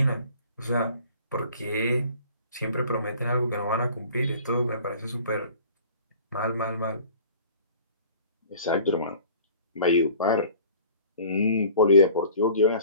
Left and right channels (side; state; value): both; inverted; correlation -0.48